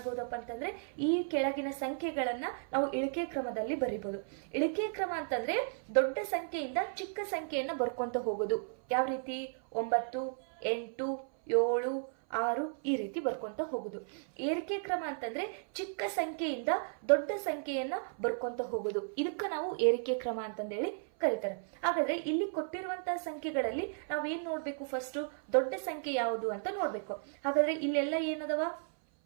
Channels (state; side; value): silent; left; 55 dB below the other